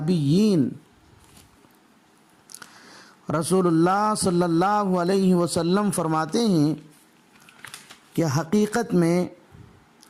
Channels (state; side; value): identical; both; correlation 1.00